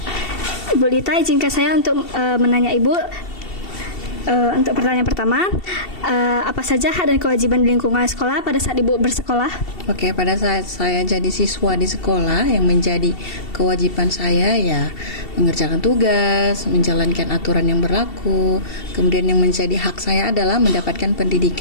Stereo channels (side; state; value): right; late; 2.7 ms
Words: Ibu Lita, izinkan saya untuk menanya Ibu untuk pertanyaan pertama, apa saja hak dan kewajiban di lingkungan sekolah pada saat Ibu bersekolah? Oke, pada saat saya jadi siswa di sekolah, yang menjadi kewajiban saya ya mengerjakan tugas, menjalankan aturan yang berlaku. Kemudian yang menjadi hak saya adalah mendapatkan